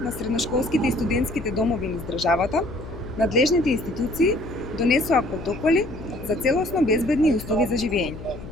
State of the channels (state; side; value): noise; left; hum, 13 dB below the sound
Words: средношколските и студентските домови низ државата, надлежните институции донесоа протоколи за целосно безбедни услови за живење.